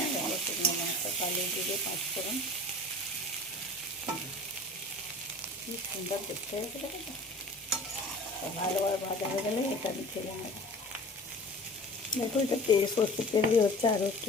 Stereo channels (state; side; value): normal; both; correlation 0.42